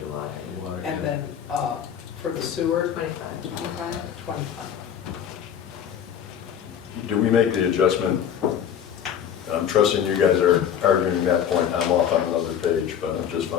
water. Water, And yeah. then for the sewer, 25. 25? 25. do we make the adjustment? And I'm trusting you guys are arguing that point. I'm off on another page, but I'm just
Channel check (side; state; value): right; quieter; 8.9 dB